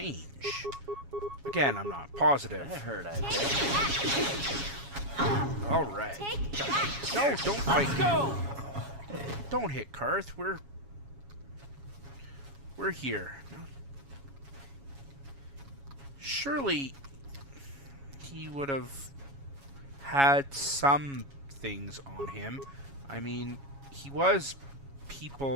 Again, I'm not positive. That hurt, I bet. Alright. No, don't fight. Let's go! Don't hit Carth. We're here. Surely he would have had some things on him. I mean, he was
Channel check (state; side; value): late; left; 7.2 ms